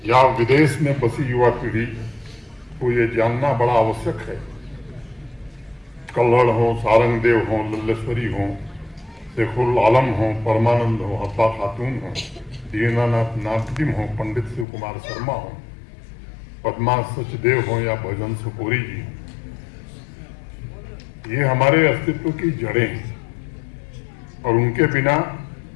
या विदेश में बसी युवा पीढ़ी को ये जानना बड़ा आवश्यक है। कल्हड़ हो, सारंगदेव हो, लल्लेश्वरी हो, शेखुल आलम हो, परमानंद हो, हब्बा खातून हो, दीनानाथ नादिम हो, पंडित शिव कुमार शर्मा हो, पद्मा सचदेव हो या भजन सुपोरी जी हो, ये हमारे अस्तित्व की जड़ें हैं और उनके बिना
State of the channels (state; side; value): drops out; right; at 14.7 s